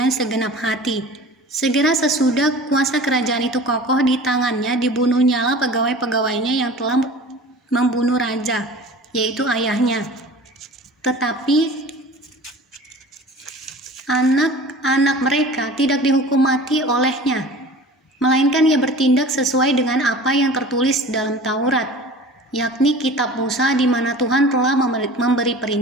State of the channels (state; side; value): normal; both; correlation 0.41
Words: segenap hati. Segera sesudah kuasa kerajaan itu kokoh di tangannya, dibunuhnyalah pegawai-pegawainya yang telah membunuh raja, yaitu ayahnya. Tetapi anak-anak mereka tidak dihukum mati olehnya, melainkan ia bertindak sesuai dengan apa yang tertulis dalam Taurat, yakni kitab Musa, di mana Tuhan telah memberi